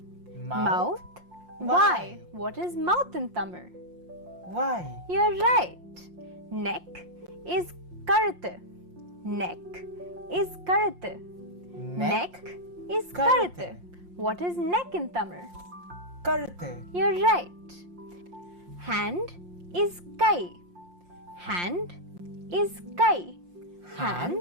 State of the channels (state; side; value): late; left; 5.7 ms